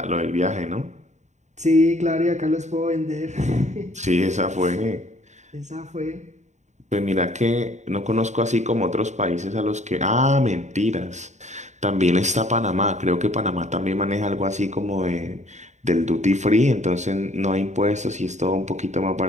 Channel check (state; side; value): late; left; 0.34 ms